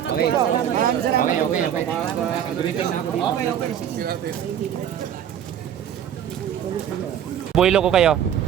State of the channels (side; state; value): left; quieter; 9.6 dB